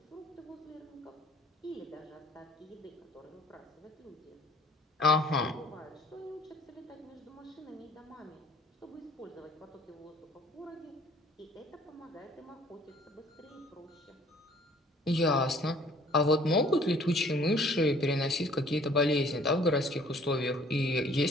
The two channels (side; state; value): both; normal; correlation 0.55